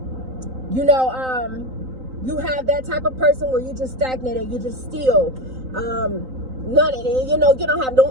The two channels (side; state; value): left; late; 3.9 ms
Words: you know, you have that type of person where you just stagnated, you just still, none of it, you know, you don't have